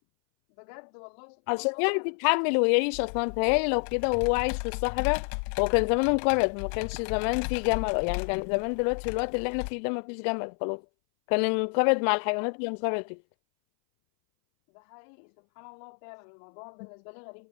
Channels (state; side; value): silent; right; 60 dB below the other